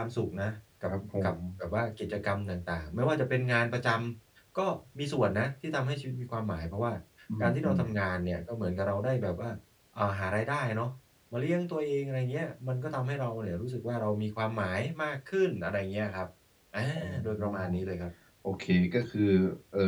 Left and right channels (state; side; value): identical; both; correlation 1.00